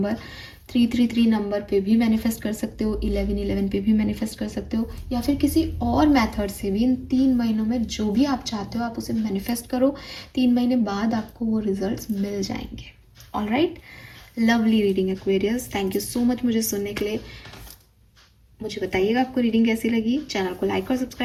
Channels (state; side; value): identical; both; correlation 1.00